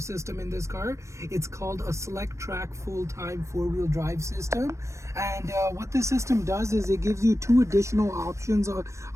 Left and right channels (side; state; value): left; late; 0.14 ms